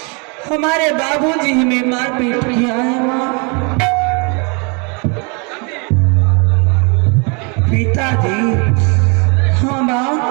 हमारे बाबूजी हमें मारपीट किया है माँ। पिताजी? हाँ माँ,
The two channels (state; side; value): quieter; left; 33.4 dB